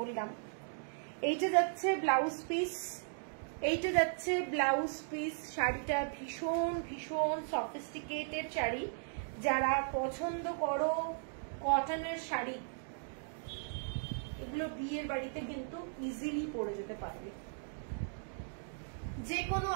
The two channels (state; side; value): silent; left; digital silence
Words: এইটা যাচ্ছে ব্লাউজ পিস, এইটা যাচ্ছে ব্লাউজ পিস। শাড়িটা ভীষণ ভীষণ সফিস্টিকেটেড শাড়ি, যারা পছন্দ করো কটনের শাড়ি, এগুলো বিয়ের বাড়িতে কিন্তু ইজিলি পরে যেতে পারবে, যে কোনো